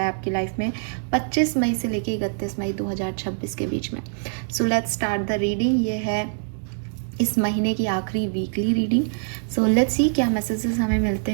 है आपकी लाइफ में 25 मई से लेके 31 मई 2026 के बीच में। So let's start the reading. ये है इस महीने की आखिरी weekly reading. So let's see क्या मैसेजेस हमें मिलते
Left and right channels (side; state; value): left; silent; digital silence